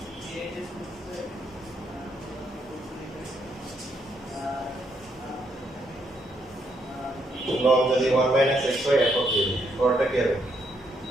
লগ যদি 1 মাইনাস x হয় একক হবে, পরটা কি হবে?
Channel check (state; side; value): normal; both; correlation 0.75